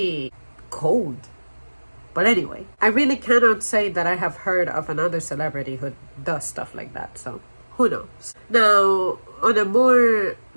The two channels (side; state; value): both; inverted; correlation -1.00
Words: cold? But anyway, I really cannot say that I have heard of another celebrity who does stuff like that, so who knows? Now, on a more